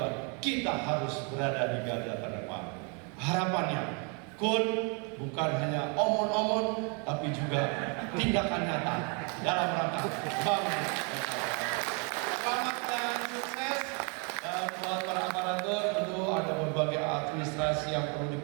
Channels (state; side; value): quieter; left; 34.6 dB